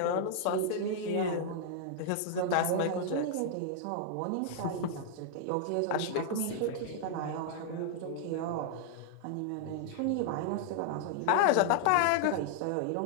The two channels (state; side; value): different; both; correlation 0.00